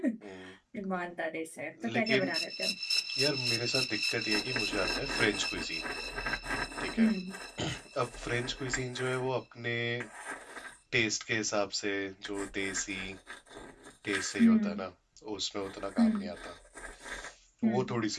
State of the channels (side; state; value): both; identical; correlation 1.00